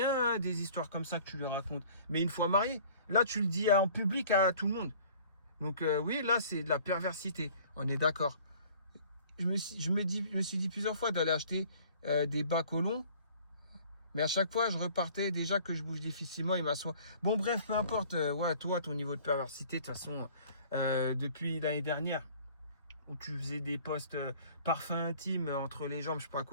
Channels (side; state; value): both; inverted; correlation -0.51